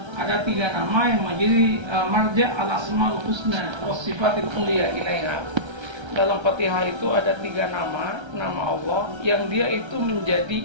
Ada 3 nama yang menjadi marja al-asmaul husna wa sifatil ulia ilaiha. Dalam Fatihah itu ada 3 nama Allah yang dia itu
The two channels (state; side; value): late; left; 1.3 ms